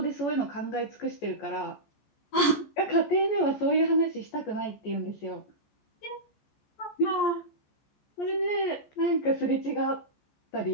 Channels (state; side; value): late; right; 14 ms